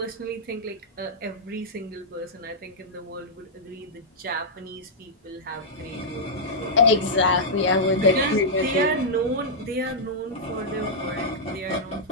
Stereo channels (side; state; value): both; normal; correlation -0.09